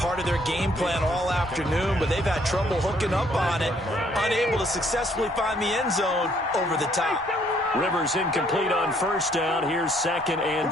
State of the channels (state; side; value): normal; both; correlation 0.65